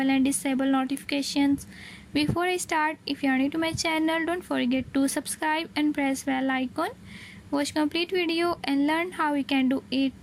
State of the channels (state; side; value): identical; both; correlation 1.00